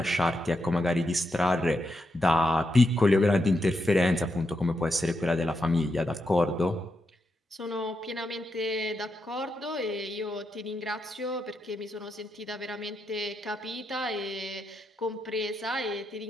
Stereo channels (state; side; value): normal; both; correlation 0.84